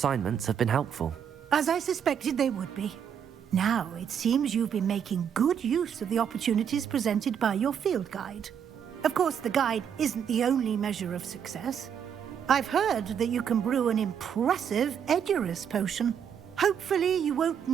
have been helpful. As I suspected they would be. Now, it seems you've been making good use of the opportunities presented by your field guide. Of course, the guide isn't the only measure of success. I've heard that you can brew an impressive Edurus potion. Hopefully, you won't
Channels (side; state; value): left; quieter; 8.1 dB